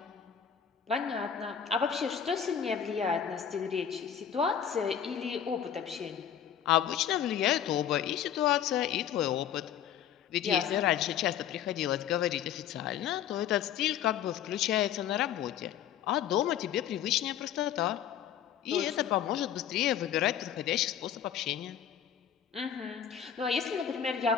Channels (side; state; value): right; quieter; 9.3 dB